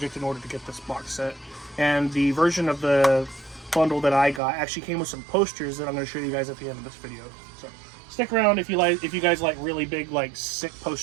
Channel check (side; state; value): left; drops out; at 4.4 s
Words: in order to get this box set, and the version of the bundle that I got actually came with some posters that I'm going to show you guys at the end of this video. So stick around if you guys like really big, like, sick